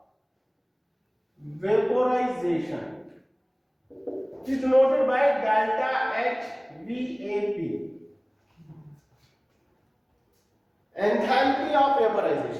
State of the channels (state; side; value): identical; both; correlation 1.00